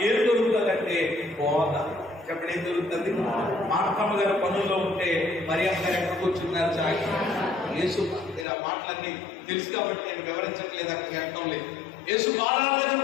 ఏం మార్తమ్మ గారు పనుల్లో ఉంటే మరియమ్మ గారు ఎక్కడ కూర్చున్నారు చాకి యేసు. మీరు ఆ మాటలన్నీ తెలుసు కాబట్టి నేను వివరించట్లేదు, అక్కడ అర్థం లేదు. యేసు పాదాల దగ్గర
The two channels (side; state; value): right; drops out; at 8.5 s